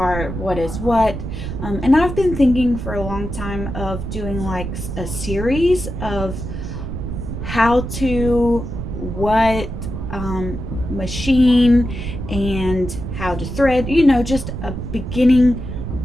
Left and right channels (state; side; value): noise; right; rumble, 6 dB below the sound